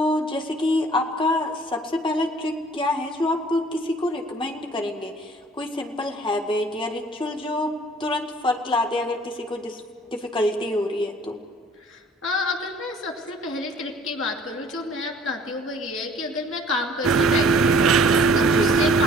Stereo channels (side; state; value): both; normal; correlation 0.54